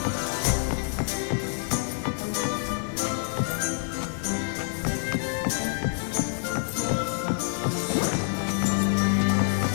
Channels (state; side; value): silent; right; digital silence